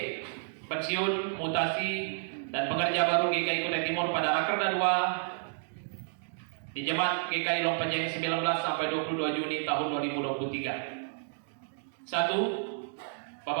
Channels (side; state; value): left; silent; digital silence